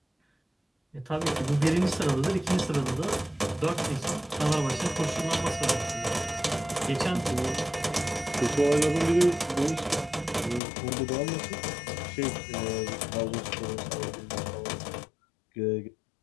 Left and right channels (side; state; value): right; drops out; at 10.6 s